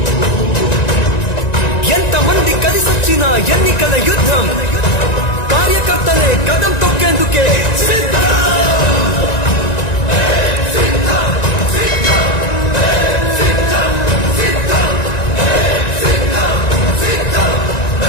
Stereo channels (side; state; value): right; late; 1.9 ms